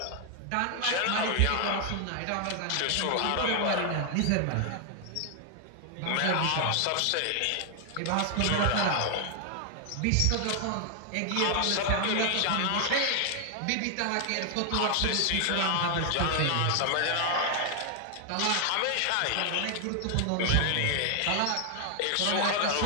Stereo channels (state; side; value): different; both; correlation 0.00